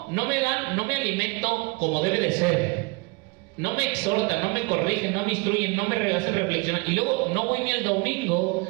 me alimento como debe de ser. No me exhortan, no me corrigen, no me instruyen, no me hacen reflexionar. Y luego no voy ni el domingo.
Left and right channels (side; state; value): left; quieter; 28.0 dB